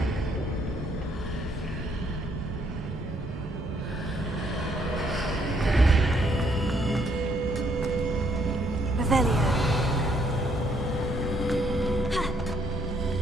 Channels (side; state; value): both; normal; correlation 0.69